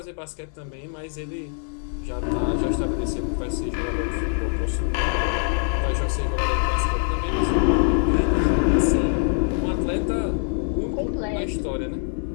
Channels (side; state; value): right; silent; 63 dB below the other